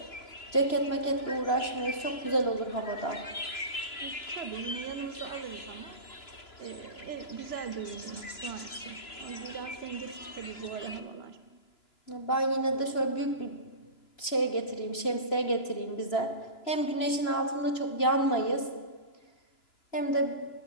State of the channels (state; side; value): late; right; 3.0 ms